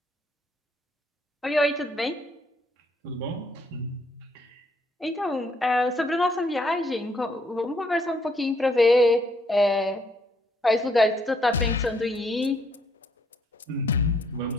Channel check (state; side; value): normal; both; correlation 0.69